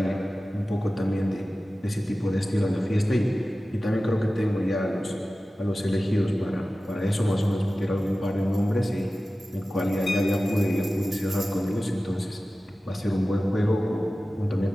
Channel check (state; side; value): normal; both; correlation 0.96